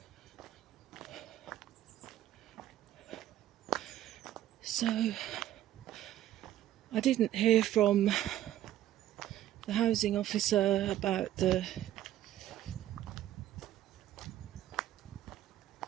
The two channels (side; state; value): left; quieter; 12.9 dB